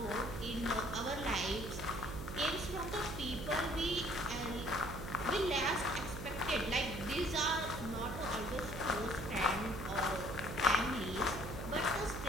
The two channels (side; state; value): right; noise; hum, 7 dB below the sound